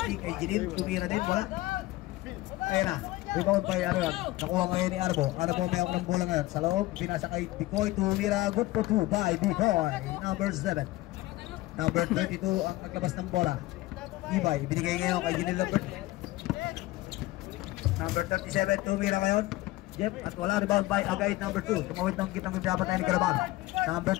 kay Jinil, tumira din, wala. Ayan na, rebound by ano yan, nakuha ngayon ni Arbo. Arbo may ako ng bola ngayon, sa loob, pinasa kay Bicoy, tumira, good for 2 by Bicoy, number 7. Number 22 ang naglabas ng bola. Ibay, ibinigay ngayon kay Jinil number 37, tumira ngayon. Jeff, at wala, rebound by Agay number 2. Tumawid ng kitang pinapatayan ni Garaban. Number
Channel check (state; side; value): quieter; right; 18.5 dB